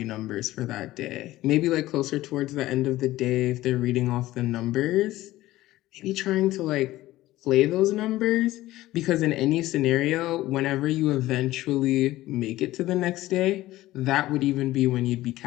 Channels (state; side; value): quieter; right; 16.3 dB